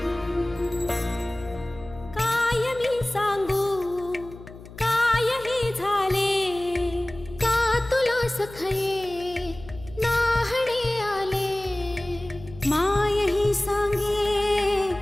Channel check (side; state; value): left; noise; hum, 17 dB below the sound